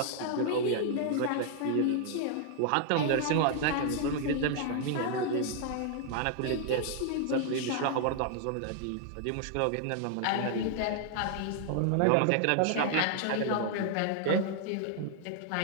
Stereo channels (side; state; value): both; different; correlation 0.00